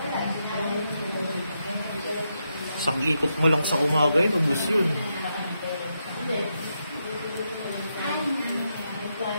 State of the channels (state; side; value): inverted; both; correlation -0.83